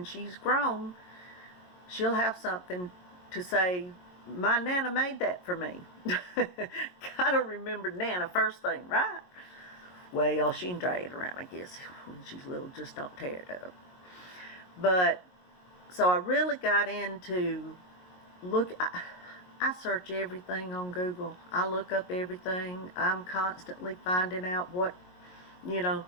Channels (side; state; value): right; late; 22 ms